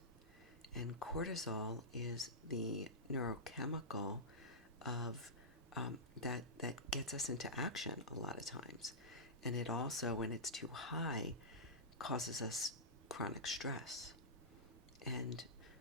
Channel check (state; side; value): normal; both; correlation -0.15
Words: And cortisol is the neurochemical of that gets us into action a lot of times. And it also, when it's too high, causes us chronic stress. And